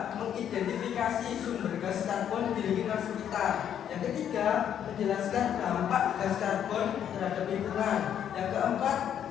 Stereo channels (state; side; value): quieter; right; 9.5 dB